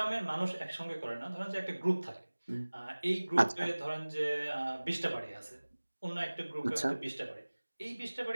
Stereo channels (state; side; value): inverted; both; correlation -1.00